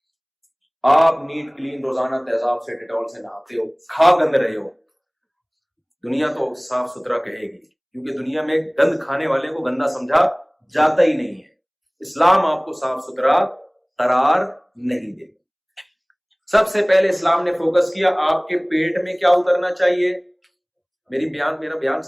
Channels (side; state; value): both; identical; correlation 1.00